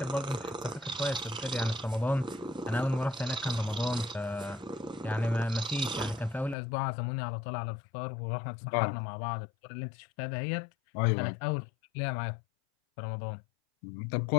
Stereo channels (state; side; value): drops out; right; at 6.6 s